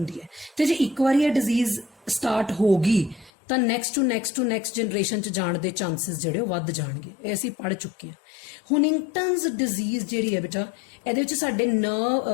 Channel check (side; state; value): right; drops out; at 3.3 s